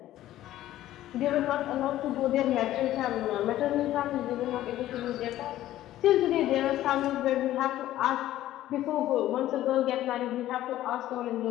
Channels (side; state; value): right; quieter; 13.9 dB